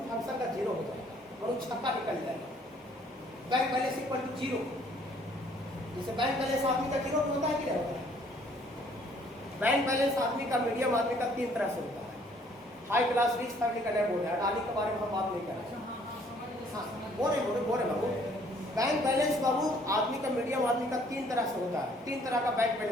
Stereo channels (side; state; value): both; normal; correlation 0.61